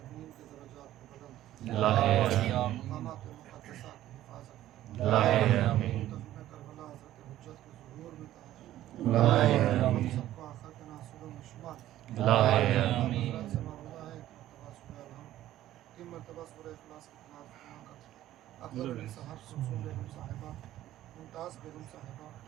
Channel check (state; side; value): quieter; left; 13.6 dB